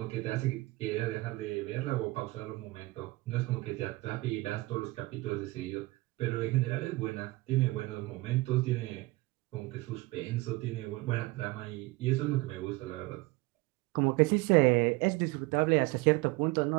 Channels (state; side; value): quieter; left; 21.6 dB